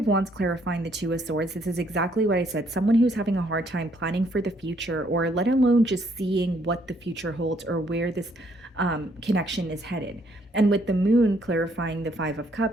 Wands clarifying the Two of Swords, this is exactly what I said. Someone who's having a hard time planning for the future, or let alone just seeing what the future holds or where this connection is headed. And with the Moon clarifying the Five of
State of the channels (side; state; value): both; normal; correlation 0.68